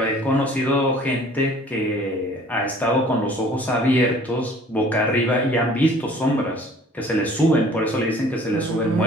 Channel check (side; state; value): both; normal; correlation 0.52